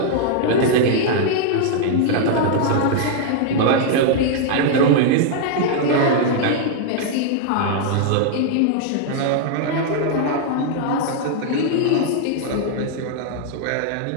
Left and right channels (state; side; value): different; both; correlation -0.01